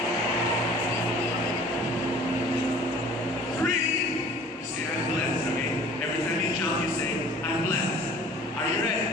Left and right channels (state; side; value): normal; both; correlation 0.48